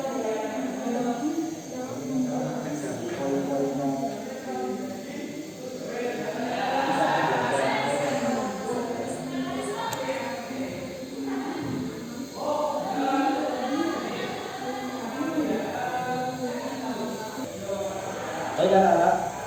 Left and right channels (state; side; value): identical; both; correlation 1.00